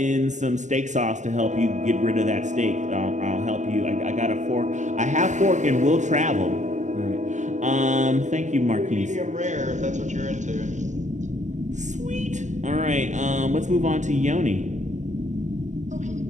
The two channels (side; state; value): left; late; 0.34 ms